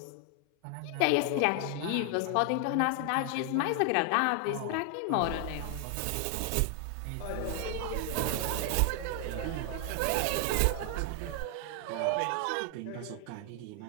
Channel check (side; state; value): both; different; correlation 0.00